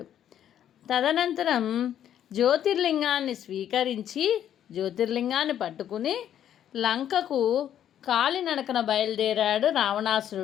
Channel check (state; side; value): quieter; right; 10.3 dB